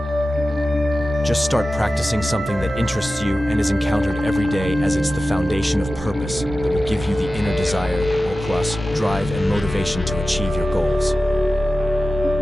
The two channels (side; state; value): both; normal; correlation 0.94